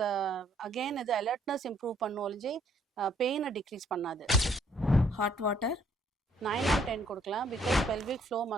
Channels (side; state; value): both; normal; correlation 0.65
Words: அகெயின் இது அலர்ட்னஸ் இம்ப்ரூவ் பண்ணும் ஒழிஞ்சு பெயினை டிக்ரீஸ் பண்ணாது. ஹாட் வாட்டர் 9 on 10 கொடுக்கலாம். பிகாஸ் பெல்விக் ஃப்ளோ